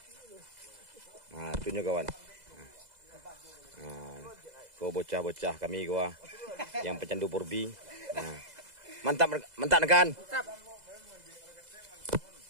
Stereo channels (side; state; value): left; late; 2.0 ms